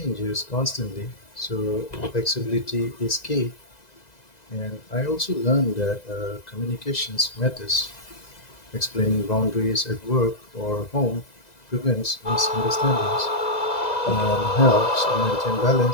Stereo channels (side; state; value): right; late; 2.0 ms